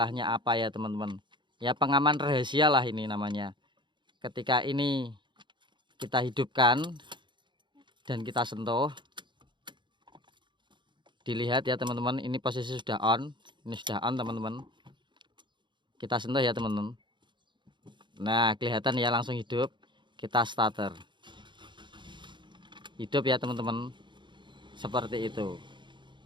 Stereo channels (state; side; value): late; left; 0.23 ms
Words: apa ya teman-teman? Ya pengaman rahasia lah ini namanya. Ketika ini kita hidupkan dan kita sentuh, dilihat ya teman-teman, ini posisi sudah on. Ini sudah on teman-teman. Kita sentuh ya teman-teman. Nah, kelihatan ya, langsung hidup. Kita starter. Hidup ya teman-teman. Seperti itu.